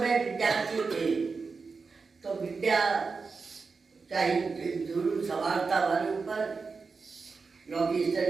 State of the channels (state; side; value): quieter; left; 4.7 dB